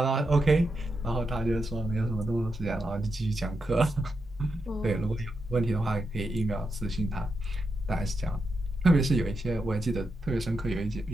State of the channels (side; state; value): both; normal; correlation 0.85